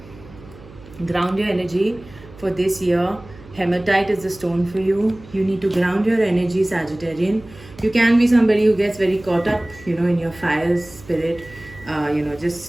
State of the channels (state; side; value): noise; right; hum, 20 dB below the sound